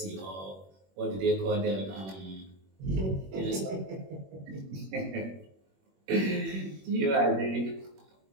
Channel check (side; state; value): left; late; 21 ms